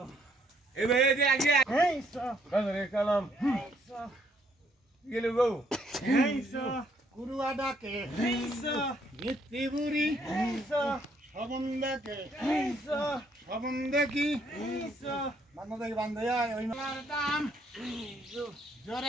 কালাম গেলে বউ কুরুয়া ডাকে মিত্তি বুড়ি সবন ডাকে সবন দেখি বান্ধব দেখি বান্ধব ওই দাম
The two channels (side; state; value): both; normal; correlation 0.69